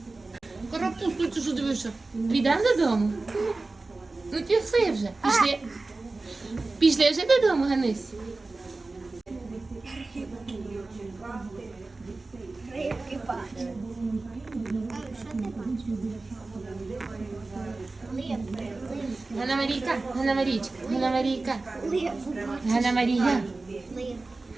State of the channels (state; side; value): quieter; left; 3.4 dB